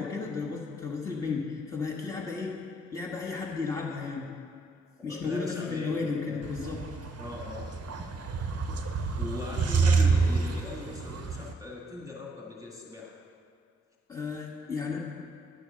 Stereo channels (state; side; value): normal; both; correlation 0.73